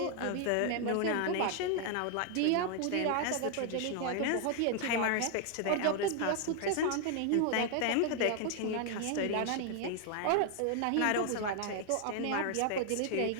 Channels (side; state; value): both; different; correlation 0.00